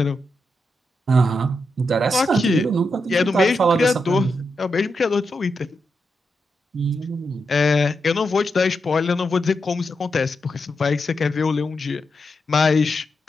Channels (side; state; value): both; normal; correlation 0.85